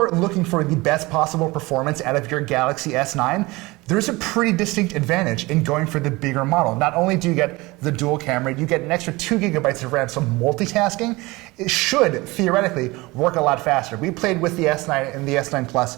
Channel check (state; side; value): quieter; left; 22.1 dB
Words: looking for the best possible performance out of your Galaxy S9, there's a pretty distinct advantage in going for the bigger model. Not only do you get the dual camera, you get an extra 2 gigabytes of RAM, so multitasking, it should theoretically work a lot faster. We played with the S9 and the S9 Plus